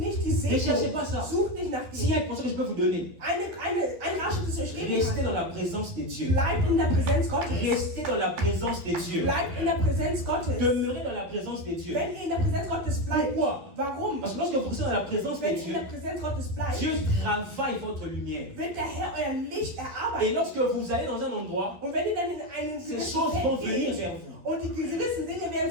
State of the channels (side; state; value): left; late; 11 ms